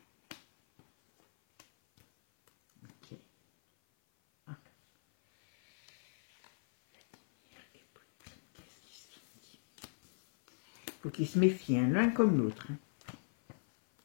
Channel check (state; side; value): silent; right; 54 dB below the other